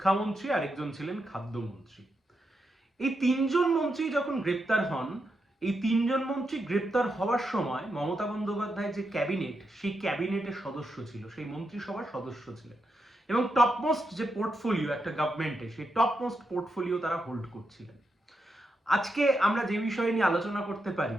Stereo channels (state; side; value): normal; both; correlation 0.85